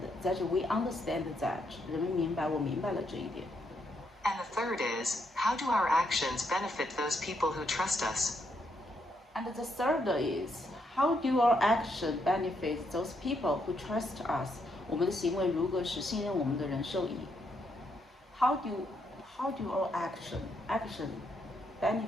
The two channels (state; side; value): normal; both; correlation 0.77